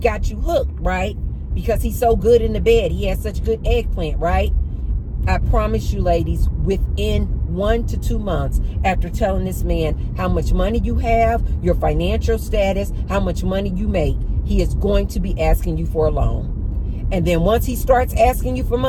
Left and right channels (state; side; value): identical; both; correlation 1.00